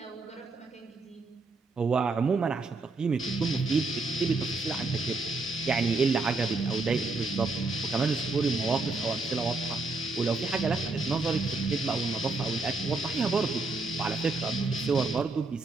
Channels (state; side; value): quieter; left; 3.5 dB